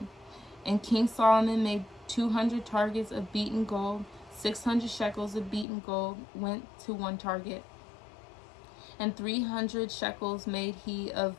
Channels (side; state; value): right; drops out; at 5.7 s